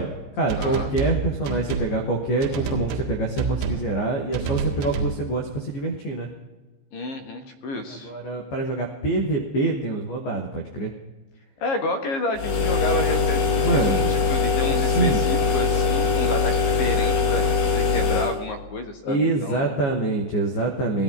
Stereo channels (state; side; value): late; right; 15 ms